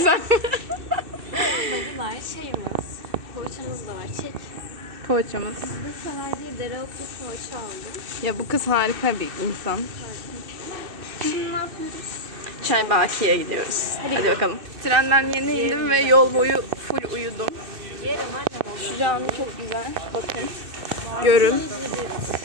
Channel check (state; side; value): late; left; 2.6 ms